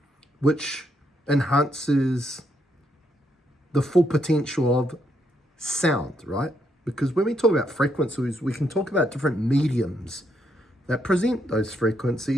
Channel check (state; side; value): normal; both; correlation 0.76